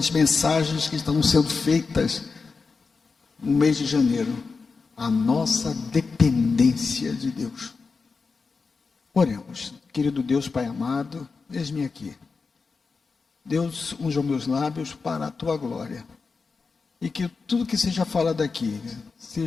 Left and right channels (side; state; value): right; quieter; 4.6 dB